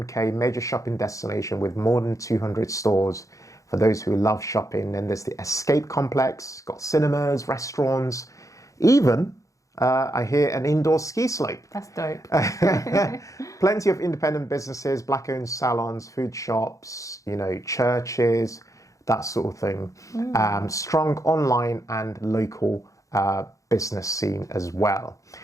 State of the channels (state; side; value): late; right; 0.16 ms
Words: major shopping destination with more than 200 stores for those who love shopping. Then there's the Escape Complex, got cinemas, restaurants, even I hear an indoor ski slope. That's dope. Plenty of independent businesses, black-owned salons, food shops, churches, that sort of thing. Strong online and local business scene as well.